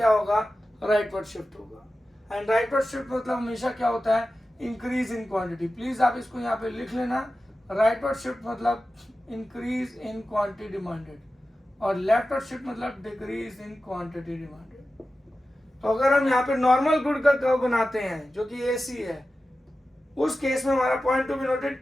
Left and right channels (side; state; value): both; normal; correlation 0.94